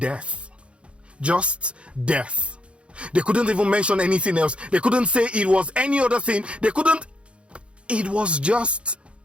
Just death. They couldn't even mention anything else. They couldn't say it was any other thing. It was just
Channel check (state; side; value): late; left; 0.059 ms